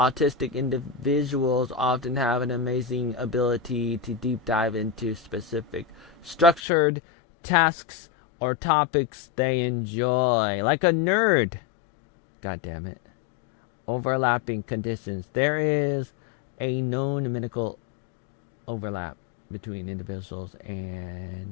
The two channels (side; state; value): right; drops out; at 6.6 s